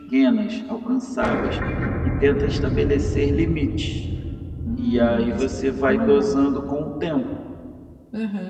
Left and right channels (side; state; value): both; identical; correlation 1.00